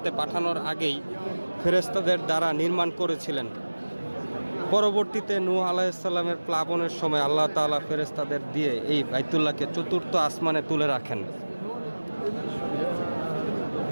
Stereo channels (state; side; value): inverted; both; correlation -1.00